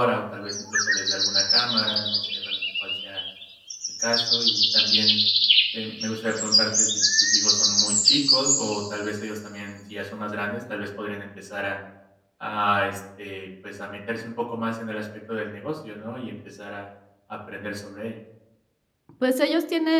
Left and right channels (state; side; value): identical; both; correlation 1.00